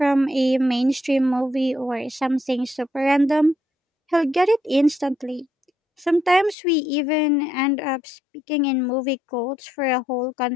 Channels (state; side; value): drops out; right; at 6.6 s